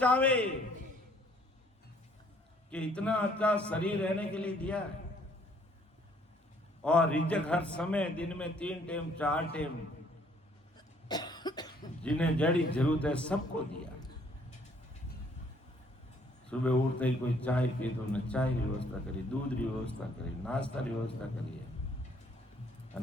कि इतना अच्छा शरीर रहने के लिए दिया है। और रिजक हर समय दिन में 3 टाइम 4 टाइम जिन्हें जड़ी जरूरत है सबको दिया। सुबह उठते ही कोई चाय पी तो उन्हें चाय की व्यवस्था करी, दूध की व्यवस्था करी, नाश्ता की व्यवस्था करी है,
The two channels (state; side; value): normal; both; correlation 0.62